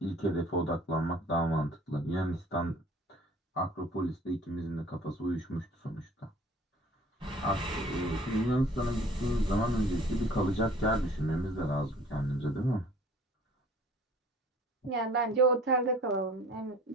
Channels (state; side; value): normal; both; correlation 0.50